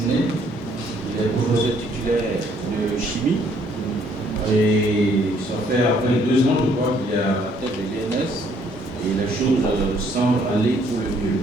Il est professeur titulaire de chimie. Et ça fait à peine 2 ans, je crois, qu'il est à la tête de l'INS et les choses semblent aller pour le mieux.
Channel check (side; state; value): both; normal; correlation 0.65